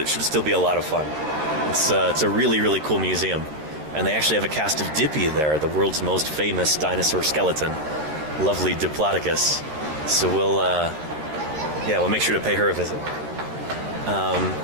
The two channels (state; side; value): late; left; 13 ms